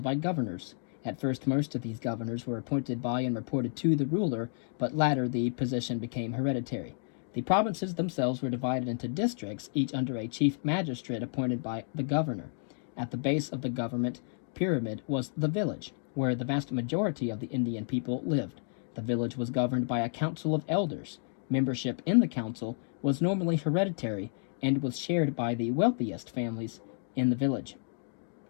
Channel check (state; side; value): silent; right; 57 dB below the other